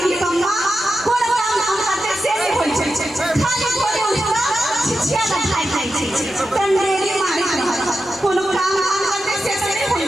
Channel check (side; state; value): both; normal; correlation 0.90